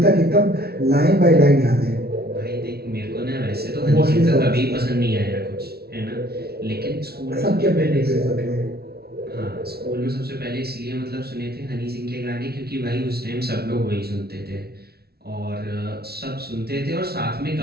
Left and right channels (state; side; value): late; left; 0.45 ms